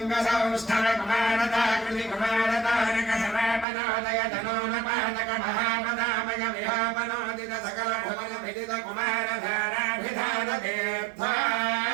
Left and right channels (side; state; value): left; drops out; at 3.7 s